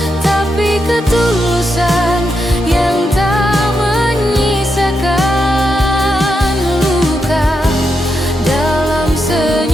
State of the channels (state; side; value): normal; both; correlation 0.84